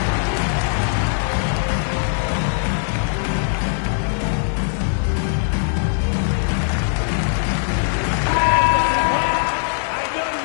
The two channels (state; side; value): silent; right; digital silence